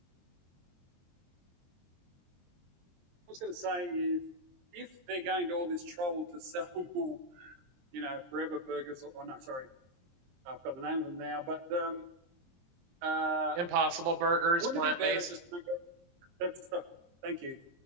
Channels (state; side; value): late; left; 23 ms